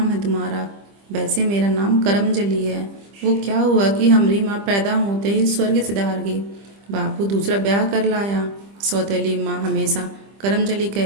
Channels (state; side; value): late; left; 25 ms